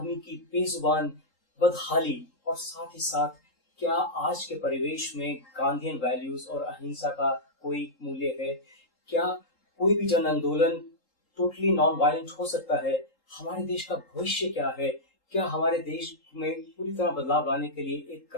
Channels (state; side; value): late; right; 3.8 ms